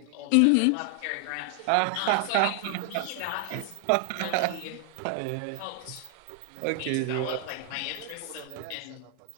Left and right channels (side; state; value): both; different; correlation 0.00